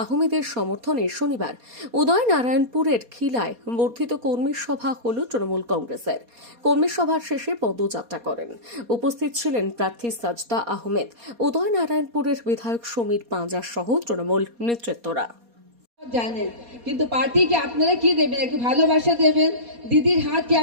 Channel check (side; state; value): left; late; 4.2 ms